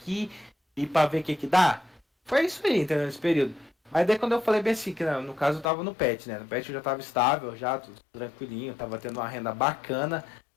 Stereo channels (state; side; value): drops out; right; at 5.7 s